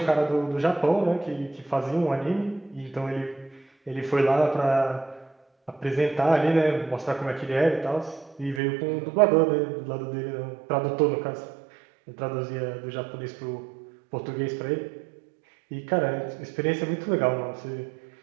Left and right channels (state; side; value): drops out; left; at 8.6 s